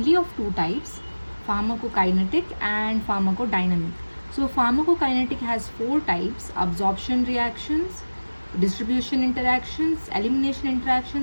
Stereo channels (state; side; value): inverted; both; correlation -1.00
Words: of two types, pharmacokinetic and pharmacodynamic. So pharmacokinetic has four types: absorption reactions, distribution interactions, elimination